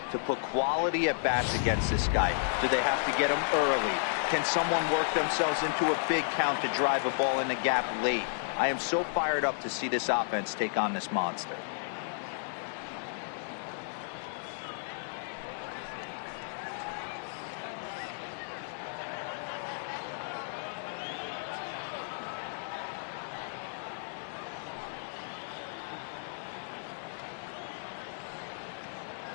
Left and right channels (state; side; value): silent; right; digital silence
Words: to put quality at bats against this guy? Do they have to get him early? Can someone work themselves into a big count to drive a ball in the gap late? I am so fired up to see this offense take on this monster.